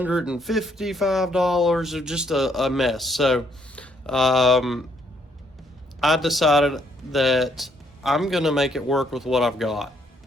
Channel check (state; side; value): normal; both; correlation 0.70